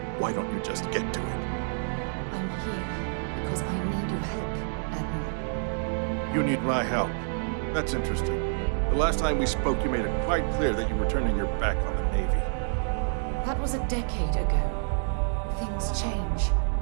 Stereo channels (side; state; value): left; silent; 59 dB below the other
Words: why don't you just get to it? I'm here because I need your help, Admiral. You need my help. That's interesting. The last time we spoke, you made it quite clear that you were turning your back on the Navy. That was a decade ago. Things change.